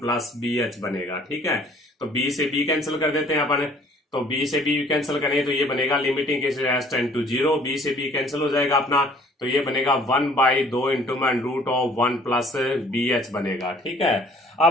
bh बनेगा। ठीक है, तो b से b कैंसिल कर देते हैं अपन, तो b से b कैंसिल करें तो ये बनेगा limiting cases h tend to 0, b से b कैंसिल हो जाएगा अपना, तो ये बनेगा 1/2 इंटू में रूट ऑफ 1 प्लस BH बनेगा। ठीक है,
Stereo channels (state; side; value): normal; both; correlation 0.56